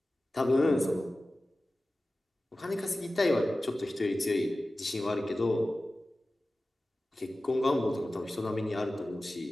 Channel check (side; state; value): both; normal; correlation 0.96